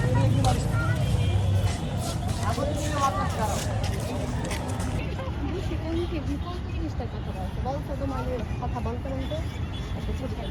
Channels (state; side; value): identical; both; correlation 1.00